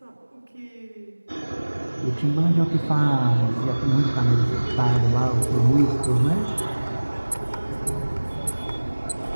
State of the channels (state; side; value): inverted; both; correlation -1.00